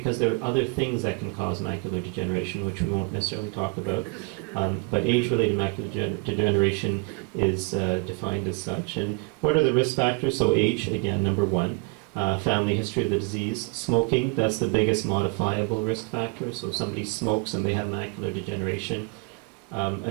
there are other things that can cause macular degeneration, which we won't necessarily talk about. But age-related macular degeneration is defined as such. And what are the risk factors? So age, again, #1. Family history of the disease. Smoking, that's the biggest modifiable risk factor. So if somebody smokes and they have macular degeneration,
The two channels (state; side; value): quieter; left; 31.7 dB